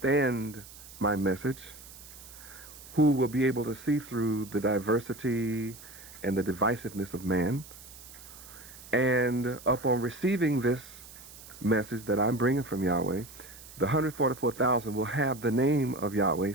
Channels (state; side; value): noise; right; hiss, 18 dB below the sound